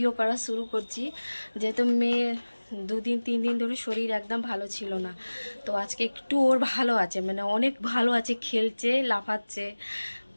করা শুরু করছি। যেহেতু মেয়ে 2-3 দিন ধরে শরীর একদম ভালো ছিল না, তো আজকে একটু ওর ভালো আছে, মানে অনেক ভালো আছে, খেলছে, লাফাচ্ছে।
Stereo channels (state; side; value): inverted; both; correlation -1.00